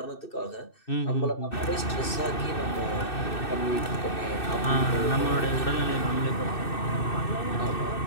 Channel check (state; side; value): late; right; 2.6 ms